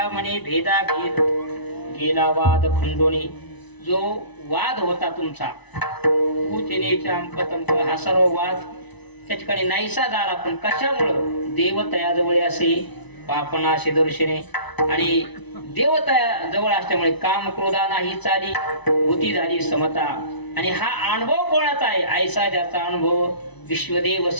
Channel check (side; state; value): right; late; 1.0 ms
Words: म्हणे भेदा भेद गेला वाद खंडोनी. जो वाद होता तुमचा कुचिनेचा अंकतंक हा सर्व वाद त्या ठिकाणी नाहीसा झाला. पण कशामुळं देवतया जवळ असे पापनाशी दर्शने आणि देवतया जवळ असल्यामुळे काम क्रोधा नाही चाली बुद्धी झाली समता. आणि हा अनुभव कोणाचा आहे ऐसा ज्याचा अनुभव विश्वदेव